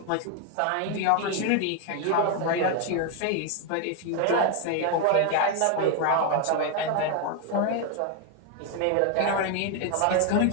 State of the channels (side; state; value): both; different; correlation 0.01